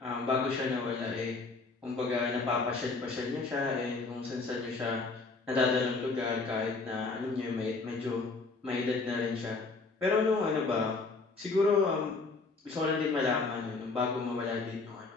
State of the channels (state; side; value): quieter; right; 3.9 dB